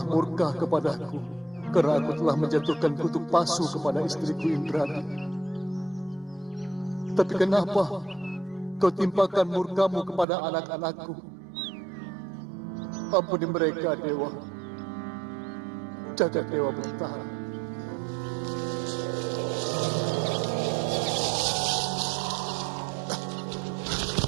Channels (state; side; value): drops out; left; at 10.2 s